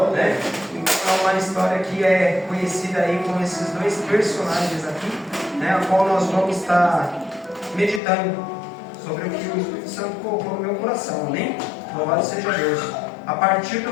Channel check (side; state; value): right; drops out; at 8.0 s